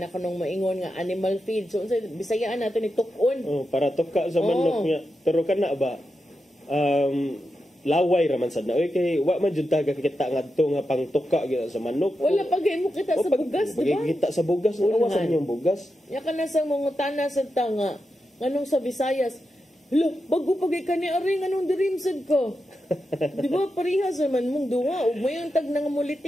kanong maingon nga animal feed. So, Bisayaan nato ni tukon. Para tuka sa manok niya. Pero kana ba, laway raman sad na. Okay, wa man jud taga kita ngadto nga pang tuka sa manok. Wala pagay mo kita sa bugas, di ba? Kita sa bugas, awasan yung bugas. Ya kana sa mga tana sa tanga. Nganong sa Visayas, lo, bago pagay ka ni Ari, nganong dirimsad ko? Di ba, parehas naman mong duwa. O mayang tag nang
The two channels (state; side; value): normal; both; correlation 0.88